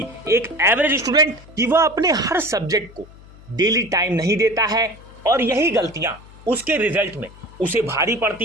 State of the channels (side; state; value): left; noise; hum, 21 dB below the sound